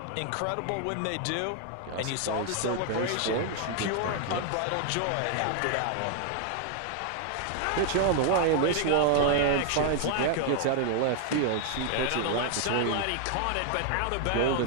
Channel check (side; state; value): both; different; correlation 0.00